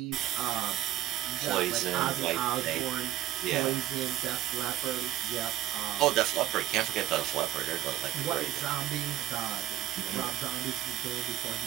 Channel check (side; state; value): left; quieter; 13.5 dB